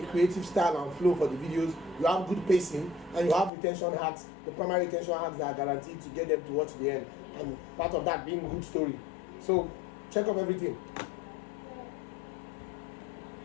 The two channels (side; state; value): right; drops out; at 3.5 s